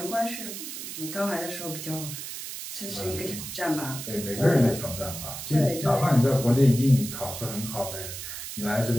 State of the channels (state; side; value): noise; right; hiss, 8 dB below the sound